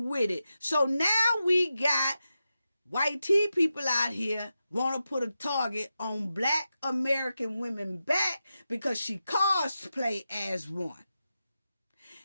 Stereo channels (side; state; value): both; inverted; correlation -0.90